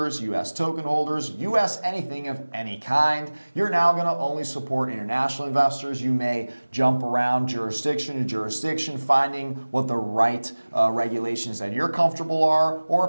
U.S. token holders, U.S. anything of any kind. You're now going to only support international investors. You may jump around jurisdiction to jurisdiction, finding what the right regulations that you're comfortable are, or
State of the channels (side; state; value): both; inverted; correlation -1.00